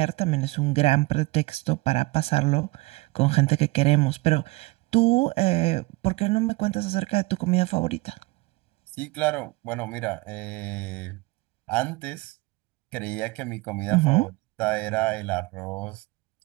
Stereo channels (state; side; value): quieter; left; 23.2 dB